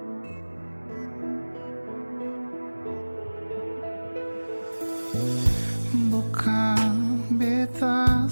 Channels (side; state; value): both; inverted; correlation -1.00